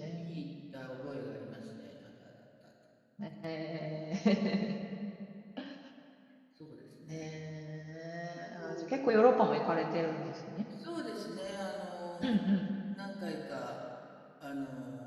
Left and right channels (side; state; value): both; identical; correlation 1.00